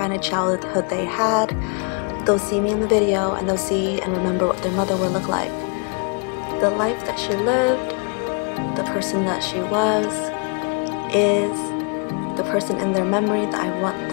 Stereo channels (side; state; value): right; quieter; 38.6 dB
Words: of childhood they had. They'll see me in the video and they'll see and remember what their mother would look like. The life that she lived, the person that she was, is the person in their memory that I want